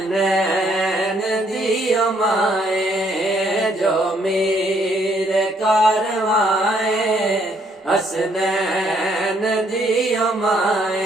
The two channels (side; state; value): both; normal; correlation 0.68